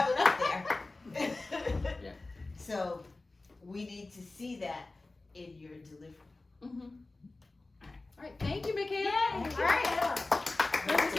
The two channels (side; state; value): right; quieter; 3.2 dB